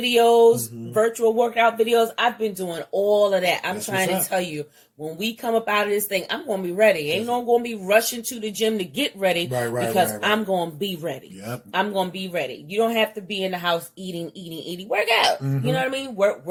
virtual workout videos. I've been doing all of that. I'm trying to tell you, when we come up out of this thing, I'm going to be ready. Ain't no going to be rushing to the gym to get ready because I'm going to be ready. Yep. I'm going to be ready. You don't have to be in the house eating. Work out. You know what I mean?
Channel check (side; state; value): both; identical; correlation 1.00